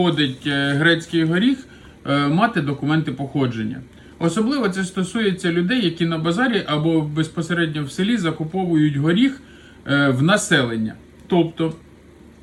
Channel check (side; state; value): both; identical; correlation 1.00